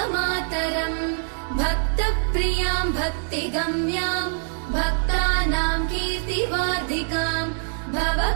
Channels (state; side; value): silent; left; 63 dB below the other